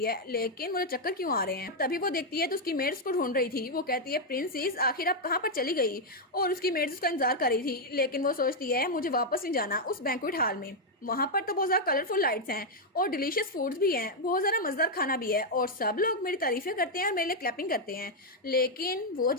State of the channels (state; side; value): normal; both; correlation 0.00